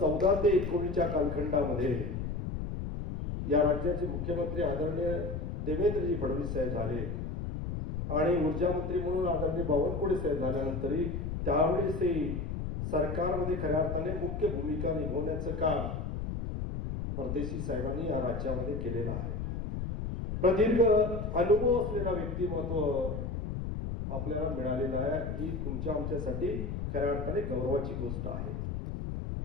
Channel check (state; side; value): noise; left; rumble, 4 dB below the sound